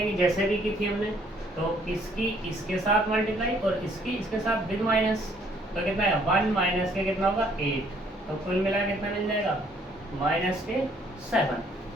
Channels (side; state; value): both; normal; correlation 0.63